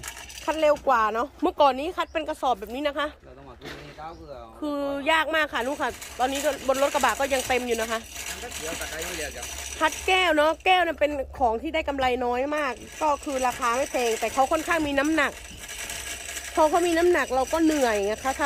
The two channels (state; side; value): identical; both; correlation 1.00